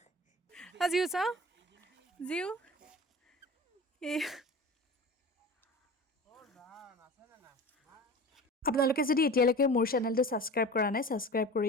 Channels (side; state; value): both; normal; correlation 0.36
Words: জিউ চাওঁ জিউ আপোনালোকে যদি এতিয়ালৈকে মোৰ চেনেলটো ছাবস্ক্ৰাইব কৰা নাই ছাবস্ক্ৰাইব